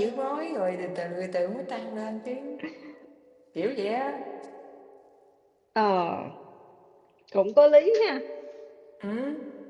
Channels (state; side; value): identical; both; correlation 1.00